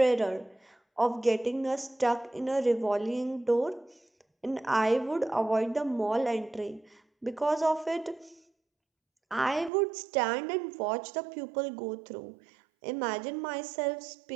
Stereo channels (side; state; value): left; drops out; at 9.7 s